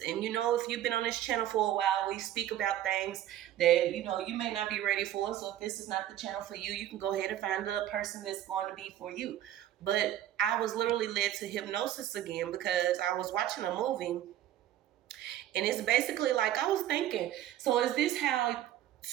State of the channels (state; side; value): quieter; left; 12.4 dB